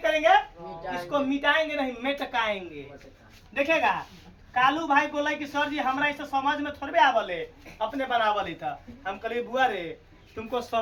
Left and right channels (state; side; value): identical; both; correlation 1.00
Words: इसको मिटाएंगे नहीं मेटकाएंगे। देखेगा, कालू भाई बोला कि सर जी हमरा इसे समझ में थोड़े आवले, अपने बनावल था। हम कहे बुआ रे तुमको